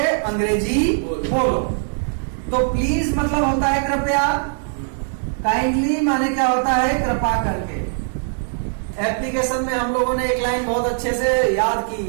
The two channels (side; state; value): left; silent; digital silence